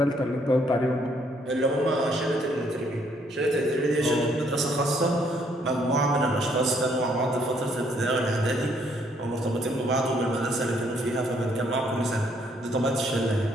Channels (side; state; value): both; normal; correlation 0.68